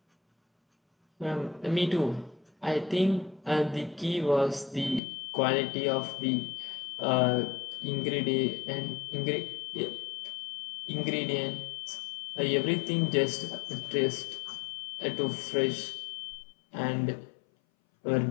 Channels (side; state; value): right; drops out; at 5.0 s